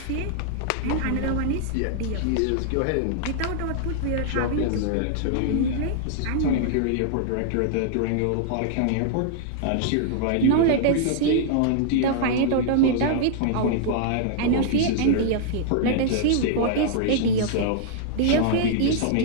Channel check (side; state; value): both; different; correlation -0.01